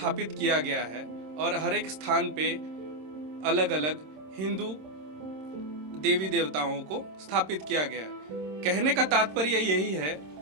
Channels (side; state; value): left; late; 26 ms